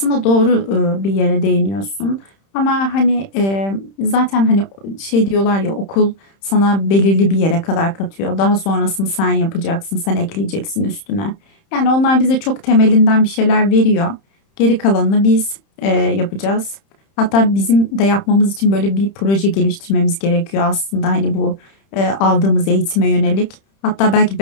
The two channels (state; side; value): late; right; 31 ms